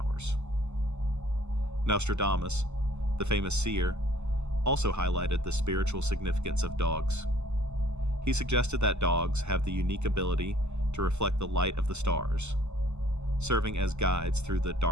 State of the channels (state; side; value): late; left; 0.82 ms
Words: Nostradamus, the famous seer, also highlighted the spiritual significance of dogs. He suggested that dogs have the unique ability to reflect the light of the stars, serving as guides through the